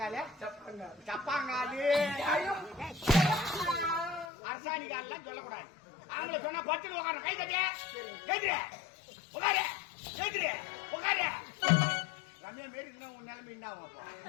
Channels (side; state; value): right; drops out; at 4.2 s